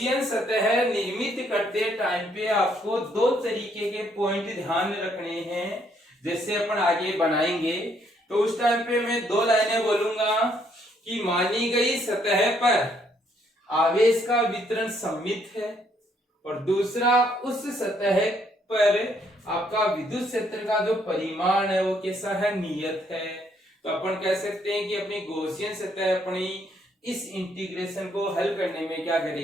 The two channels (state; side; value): normal; both; correlation 0.70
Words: सतह निर्मित करते टाइम पे आपको दो तरीके के पॉइंट ध्यान रखने हैं। जैसे अपन आगे बनाएंगे तो उस टाइम पे मैं दो लाइनें बोलूंगा कि मानी गई सतह पर आवेश का वितरण सममित है, और दूसरा उस सतह पर आपका विद्युत क्षेत्र का जो परिमाण है वो कैसा है, नियत है। तो अपन कह सकते हैं कि अपनी गॉसियन सतह अपनी इस इंटीग्रेशन को हल करने में क्या